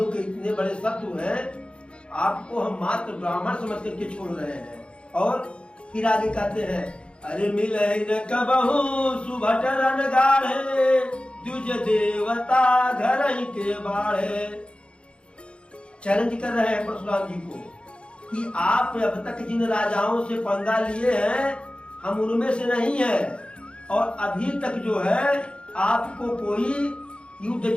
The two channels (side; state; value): right; late; 0.057 ms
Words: के इतने बड़े शत्रु हैं, आपको हम मात्र ब्राह्मण समझ करके छोड़ रहे हैं। और फिर आगे कहते हैं अरे मिले न कबहू सुभट रन गाढ़े द्विज देवता घर ही के बाढ़े। चैलेंज कर रहे हैं परशुराम जी को कि आप अब तक जिन राजाओं से पंगा लिए हैं हम उनमें से नहीं है, और अभी तक जो है आपको कोई युद्ध